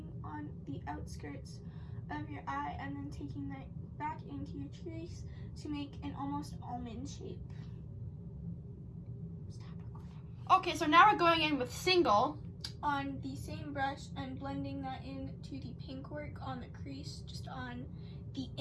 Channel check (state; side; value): identical; both; correlation 1.00